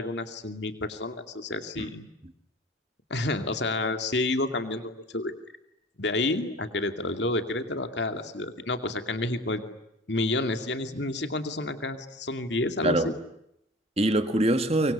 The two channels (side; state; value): both; normal; correlation 0.40